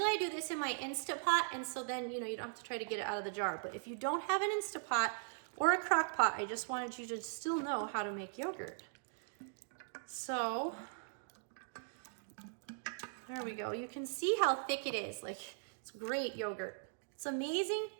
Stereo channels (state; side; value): silent; left; digital silence